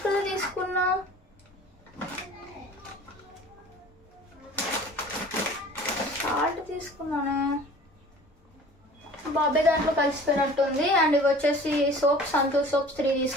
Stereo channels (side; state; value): both; normal; correlation 0.45